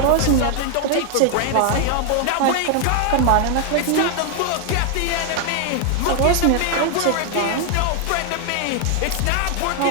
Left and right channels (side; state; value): both; different; correlation 0.00